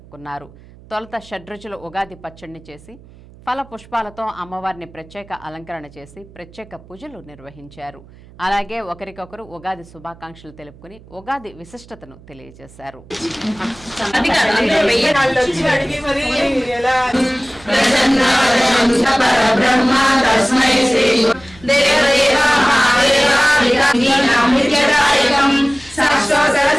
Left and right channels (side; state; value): right; noise; hum, 23 dB below the sound